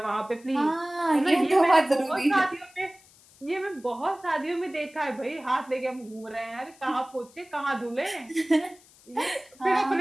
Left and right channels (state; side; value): noise; left; hiss, 26 dB below the sound